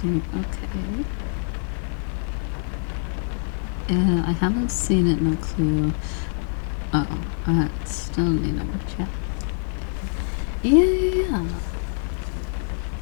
Okay. I haven't seen it. No clue. Oh, I still need to watch it. Yeah.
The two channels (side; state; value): right; silent; 62 dB below the other